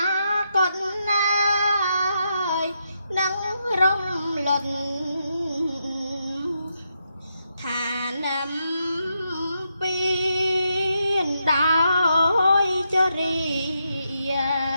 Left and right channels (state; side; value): inverted; both; correlation -0.82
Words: គតណាយនឹងរំលត់ឋានំពីនដោយចរិយា